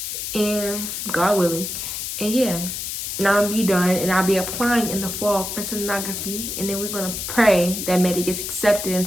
and God willing. And yeah, now I'll be done, and I'll be applying in the fall for sonography, and then we're gonna pray that Maddie gets accepted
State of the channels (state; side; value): noise; left; hiss, 5 dB below the sound